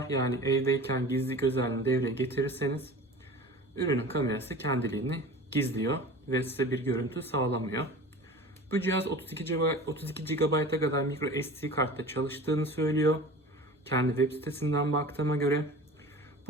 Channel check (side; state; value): both; normal; correlation 0.38